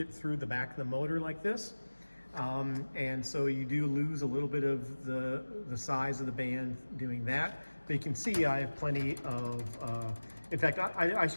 through the back of the motor like this. And so you do lose a little bit of the size of the band doing that. But you can see I have plenty of, in fact, I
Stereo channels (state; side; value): inverted; both; correlation -1.00